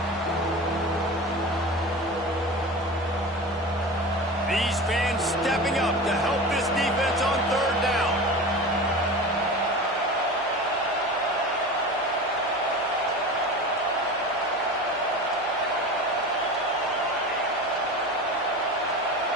These fans stepping up to help this defense on third down.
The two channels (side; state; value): left; noise; hum, 27 dB below the sound